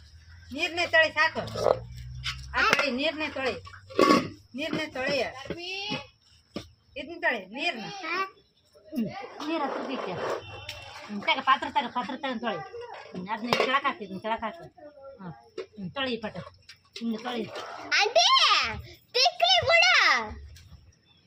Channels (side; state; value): both; identical; correlation 1.00